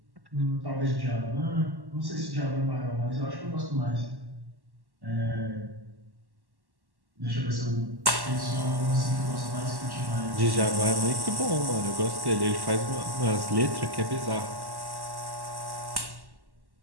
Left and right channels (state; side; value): late; left; 1.1 ms